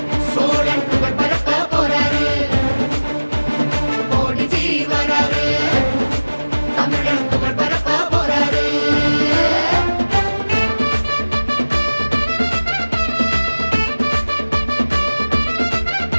சோழன் புகழ் பரப்ப போறாரு கோடி ஜீவராரு தமிழன் புகழ் பரப்ப போறாரு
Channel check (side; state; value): both; inverted; correlation -1.00